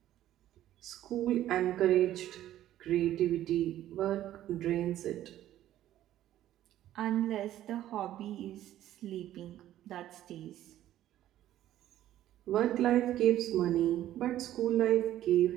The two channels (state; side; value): quieter; left; 12.9 dB